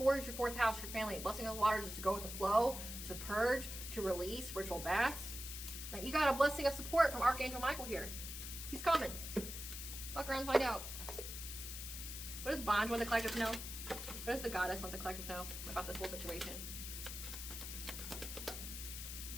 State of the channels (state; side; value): noise; left; hiss, 7 dB below the sound